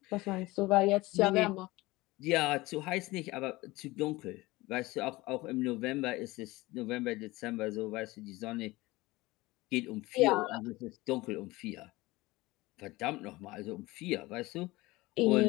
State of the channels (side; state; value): right; quieter; 20.4 dB